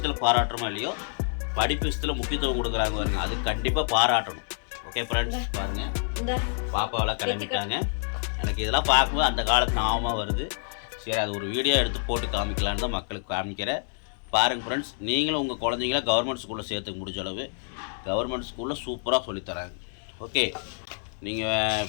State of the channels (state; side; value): silent; right; digital silence